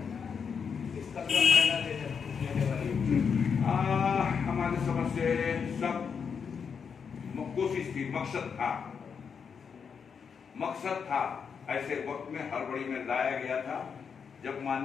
इसका क्या फायदा लेने वाली? हमारे समझ से सब कोशिश थी, मकसद था, ऐसे वक्त में हड़बड़ी में लाया गया था जब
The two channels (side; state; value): right; quieter; 6.4 dB